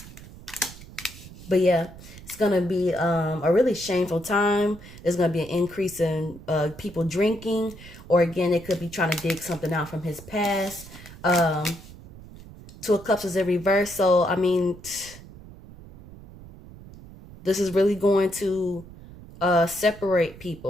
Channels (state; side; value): noise; right; rumble, 18 dB below the sound